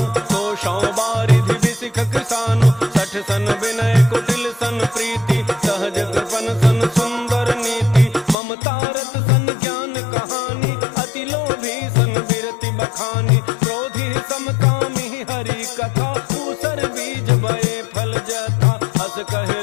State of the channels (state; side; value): drops out; right; at 8.3 s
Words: कोशौ बारिधि बिसिख किसानु, 60 सन विनय कुटिल सन प्रीति, सहज कृपन सन सुंदर नीति, ममता रत सन ज्ञान कहानी, अति लोभी सन बिरति बखानी, क्रोधी समकामी हरि कथा, ऊसर बीज बये फल जथा, हस कहे